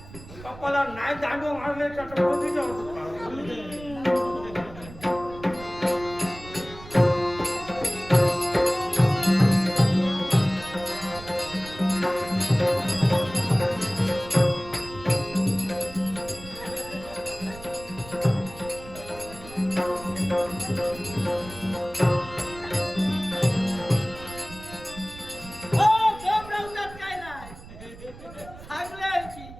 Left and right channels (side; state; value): right; noise; rumble, 17 dB below the sound